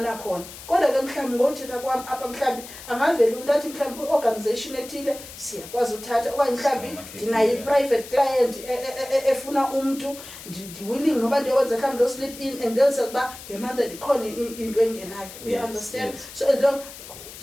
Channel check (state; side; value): noise; left; hiss, 15 dB below the sound